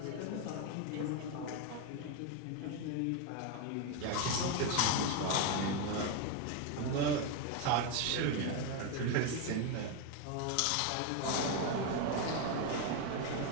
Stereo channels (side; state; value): both; different; correlation 0.02